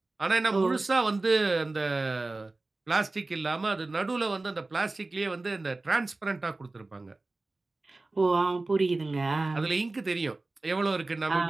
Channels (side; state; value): left; quieter; 3.2 dB